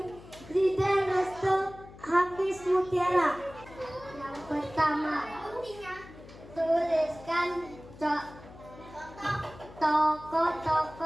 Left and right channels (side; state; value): left; noise; hum, 18 dB below the sound